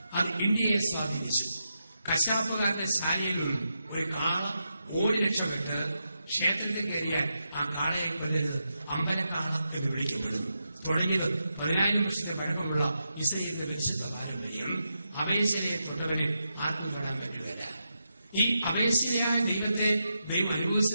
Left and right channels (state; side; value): inverted; both; correlation -0.86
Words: അത് ഇന്ത്യയെ സ്വാധീനിച്ചു. കശാപ്പുകാരുടെ ശാലയിൽ നിന്നും ഒരു കാള ഓടി രക്ഷപ്പെട്ട് ക്ഷേത്രത്തിൽ കയറിയാൽ ആ കാളയെ കൊല്ലരുത്, അമ്പലക്കാള എന്ന് വിളിക്കപ്പെടുന്നു. തുടങ്ങിയത് 10,000 വർഷത്തെ പഴക്കമുള്ള ഇസ്രയേലിന്റെ പരിശുദ്ധ പാരമ്പര്യം. അപേക്ഷയെ തൊട്ടവനെ ആർക്കും തൊടാൻ പറ്റുകയില്ല. ഈ അപേക്ഷയായ ദൈവത്തെ ദൈവം